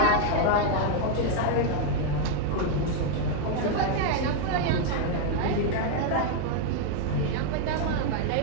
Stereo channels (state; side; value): different; both; correlation 0.00